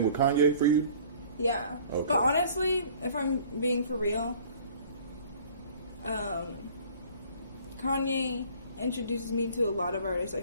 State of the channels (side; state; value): both; inverted; correlation -0.51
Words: with Kanye for you? Yeah. Okay. But honestly, if I'm being for real, Kanye introduces me to a lot of artists I